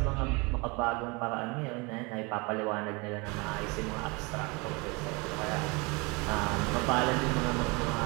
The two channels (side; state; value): left; quieter; 27.9 dB